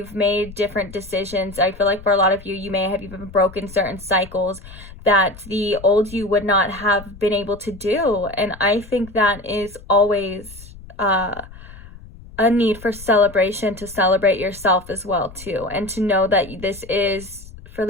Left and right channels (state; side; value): noise; left; rumble, 18 dB below the sound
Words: made different decisions. I feel like for a lot of you, you may have even broken certain cycles that the old you would not have been able to do. And I think that is always a need for celebration, to celebrate yourself as well too, and to know that this is for